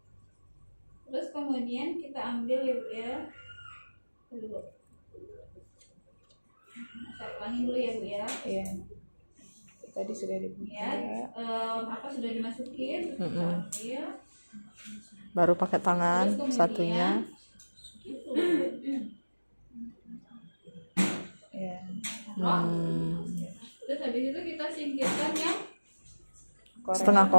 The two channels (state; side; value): inverted; both; correlation -1.00